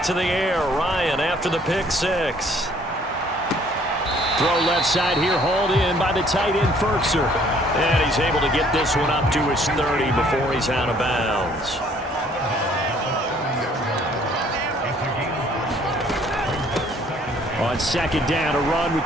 to the air. Ryan after the pick 6. Throw left side here, hauled in by the tight end, Ferkser. And he's able to get this one up to his 30 before he's out of bounds. On 2nd down, a run with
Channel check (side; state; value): both; normal; correlation 0.60